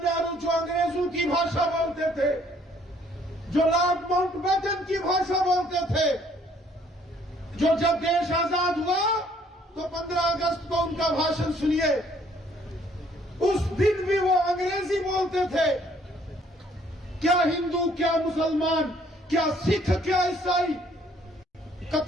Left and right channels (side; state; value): both; normal; correlation 0.63